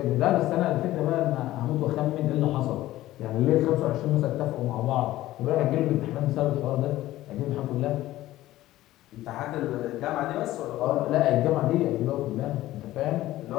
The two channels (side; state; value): right; quieter; 15.6 dB